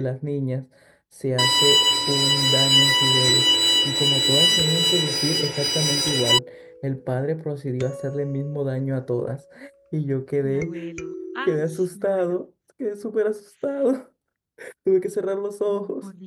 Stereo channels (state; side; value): identical; both; correlation 1.00